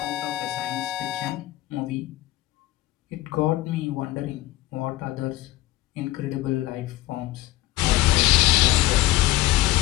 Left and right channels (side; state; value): right; quieter; 16.9 dB